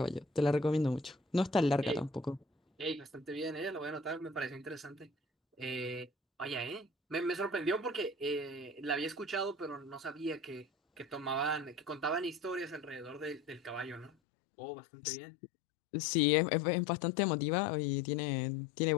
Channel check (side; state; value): right; drops out; at 14.1 s